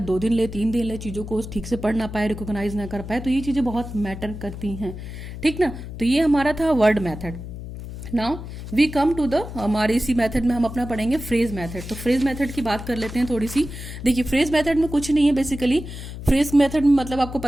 2 दिन ले, 3 दिन ले, चीज़ों को ठीक से पढ़ ना पाए, रिकॉग्नाइज ना कर पाए। तो ये चीज़ें बहुत मैटर करती हैं, ठीक ना। तो ये हमारा था word method. Now we come to the, हमारे इसी मेथड में हम अपना पढ़ेंगे फ्रेज मेथड। तो फ्रेज मेथड की बात कर लेते हैं थोड़ी सी। देखिए फ्रेज मेथड में कुछ नहीं है बेसिकली। फ्रेज मेथड में मतलब आपको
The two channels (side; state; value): left; noise; hum, 10 dB below the sound